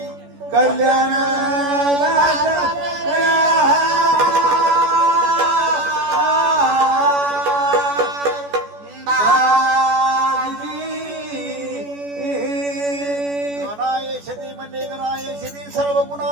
कल्याण गणायशदी म्हणले गणायशदी सर्व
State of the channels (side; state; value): left; late; 14 ms